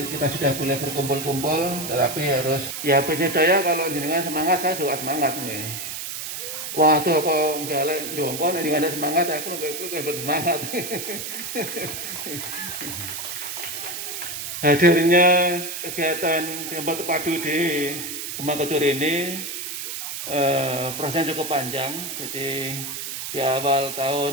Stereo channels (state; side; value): noise; right; hiss, 6 dB below the sound